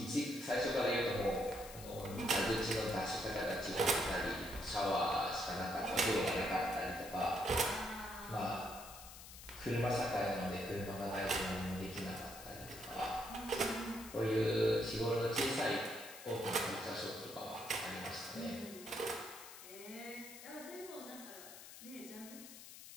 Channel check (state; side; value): noise; left; hiss, 14 dB below the sound